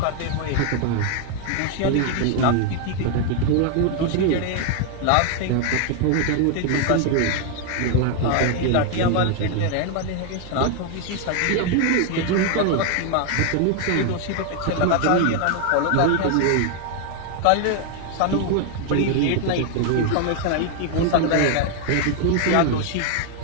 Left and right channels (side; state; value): both; different; correlation 0.00